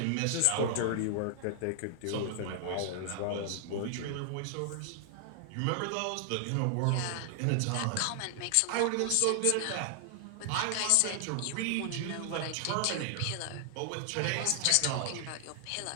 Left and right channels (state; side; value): different; both; correlation 0.00